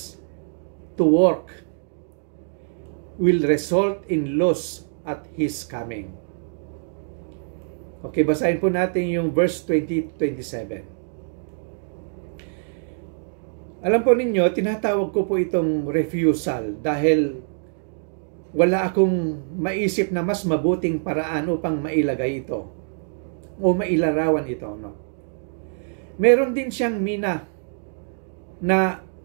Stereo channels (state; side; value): silent; left; digital silence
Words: to work will result in loss at His coming. Okay, basahin po natin yung verse 20-27. Alam po ninyo, tinatawag ko po itong refusal dahil wala akong maisip na mas mabuting paraan upang mailagay ito o mailarawan ito. No? Meron din siyang mina na